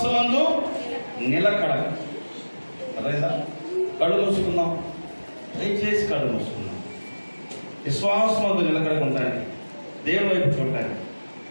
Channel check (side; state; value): both; inverted; correlation -1.00